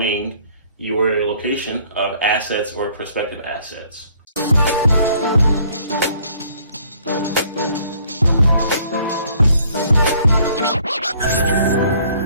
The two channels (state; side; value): inverted; both; correlation -0.60